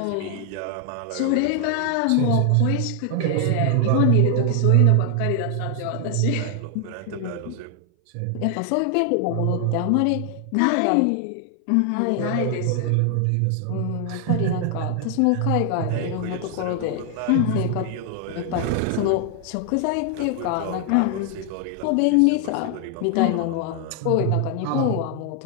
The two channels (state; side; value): different; both; correlation 0.00